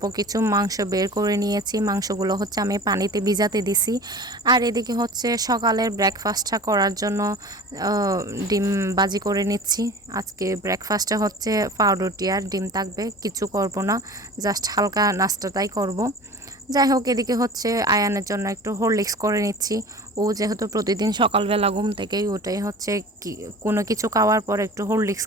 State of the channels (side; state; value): both; normal; correlation 0.39